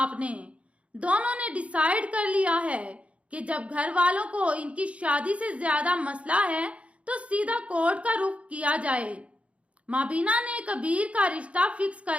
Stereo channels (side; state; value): left; late; 0.063 ms